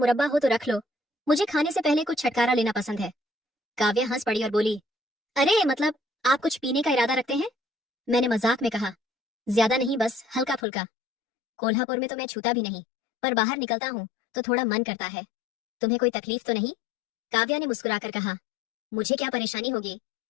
हो तो रख लो, मुझे खाने से पहले कुछ छटकारा लेना पसंद है। काव्या हंस पड़ी और बोली, अरे मतलब आप कुछ पीने का इरादा रखते हैं? मैंने मजाक में कहा, ज्यादा नहीं, बस हल्का फुल्का। कोल्हापुर में तो मैं छूता भी नहीं, पर बाहर निकलता हूँ तो थोड़ा मन करता है। तुम्हें कोई तकलीफ तो नहीं? काव्या ने मुस्कुराकर कहा, मुझे क्या परेशानी होगी,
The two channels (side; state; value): right; drops out; at 10.6 s